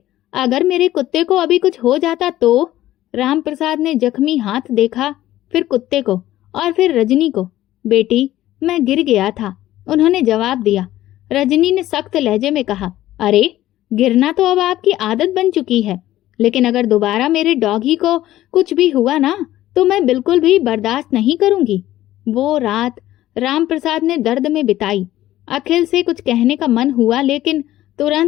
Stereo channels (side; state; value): right; quieter; 14.4 dB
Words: अगर मेरे कुत्ते को अभी कुछ हो जाता तो? राम प्रसाद ने जख्मी हाथ देखा, फिर कुत्ते को और फिर रजनी को। बेटी, मैं गिर गया था, उन्होंने जवाब दिया। रजनी ने सख्त लहजे में कहा, अरे, गिरना तो अब आपकी आदत बन चुकी है, लेकिन अगर दोबारा मेरे डॉगी को कुछ भी हुआ ना तो मैं बिल्कुल भी बर्दाश्त नहीं करूंगी। वो रात राम प्रसाद ने दर्द में बिताई। अखिल से कुछ कहने का मन हुआ, लेकिन